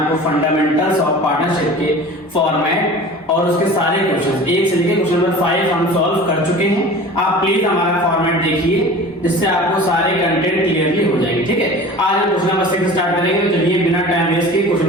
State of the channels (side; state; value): both; normal; correlation 0.39